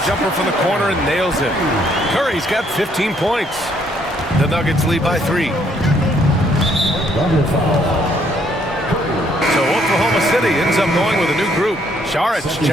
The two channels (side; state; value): both; normal; correlation 0.68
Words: jumper from the corner and nails it. Curry's got 15 points. The Nuggets lead by 3. So Oklahoma City ends up going with a new group. Saric